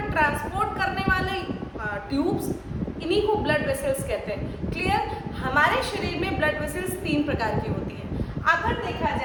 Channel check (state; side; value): identical; both; correlation 1.00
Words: ट्रांसपोर्ट करने वाले ट्यूब्स, इन्हीं को ब्लड वेसल्स कहते हैं। क्लियर? हमारे शरीर में ब्लड वेसल्स तीन प्रकार की होती है। अगर देखा